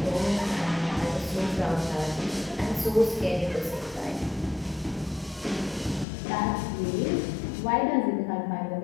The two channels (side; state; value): right; drops out; at 6.1 s